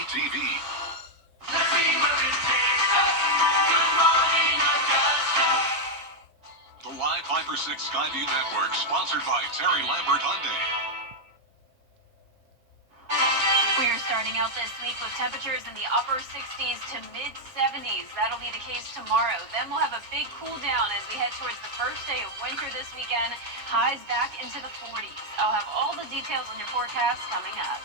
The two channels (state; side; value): late; left; 7.2 ms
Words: The Live 5 for 6 Skyview Network, sponsored by Terry Lambert Hyundai. We are starting out this week with temperatures in the upper 60s to mid 70s. That'll be the case tomorrow. Then we'll have a big cool down as we head towards the first day of winter this weekend. Highs back into the 40s. I'll have all the details on your forecast coming up.